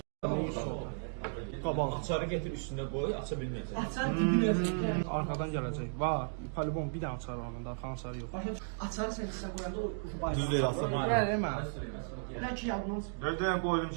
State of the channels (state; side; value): silent; left; digital silence